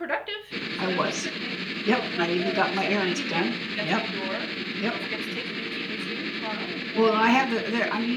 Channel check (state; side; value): identical; both; correlation 1.00